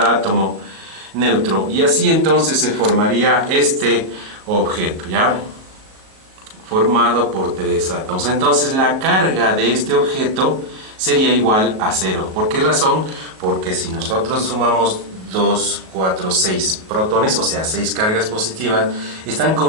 átomo neutro. Y así entonces se formaría este objeto, ¿ya? Formado por 3 átomos. Entonces la carga de este objeto sería igual a 0. ¿Por qué razón? Porque si nosotros sumamos 2, 4, 6 protones, o sea 6 cargas positivas, están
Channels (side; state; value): left; late; 37 ms